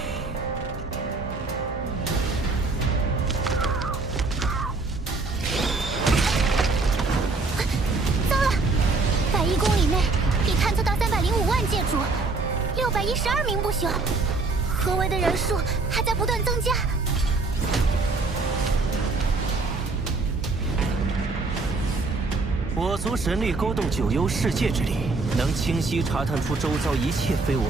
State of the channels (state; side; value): quieter; left; 3.7 dB